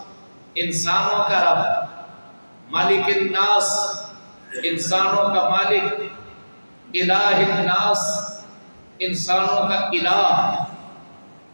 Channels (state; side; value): inverted; both; correlation -1.00